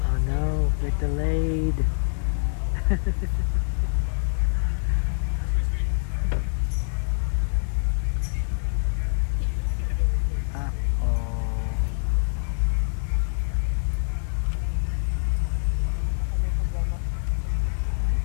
Oh no, we're delayed.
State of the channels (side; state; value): right; silent; digital silence